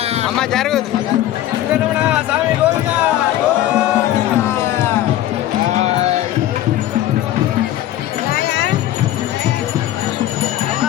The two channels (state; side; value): quieter; right; 13.3 dB